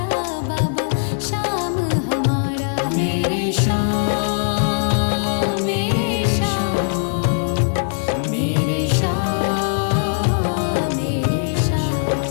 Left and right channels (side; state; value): right; silent; 61 dB below the other